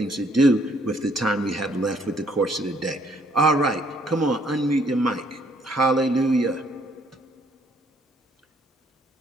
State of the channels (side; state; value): both; normal; correlation 0.66